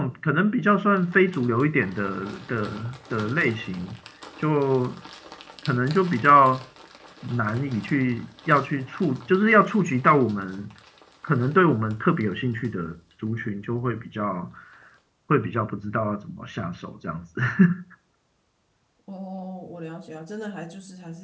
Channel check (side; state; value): both; identical; correlation 1.00